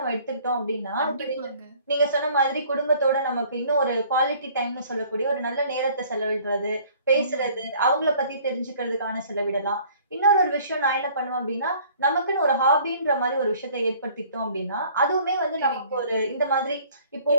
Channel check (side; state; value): both; inverted; correlation -0.54